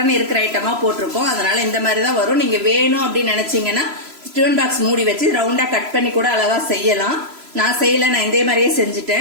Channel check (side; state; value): left; late; 3.0 ms